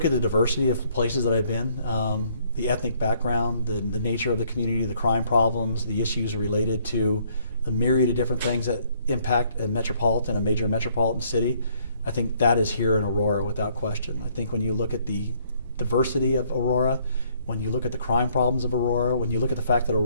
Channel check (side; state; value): both; inverted; correlation -0.65